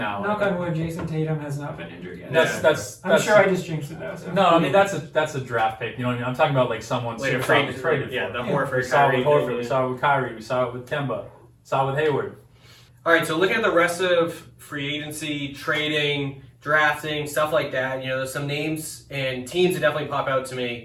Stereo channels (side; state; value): both; identical; correlation 1.00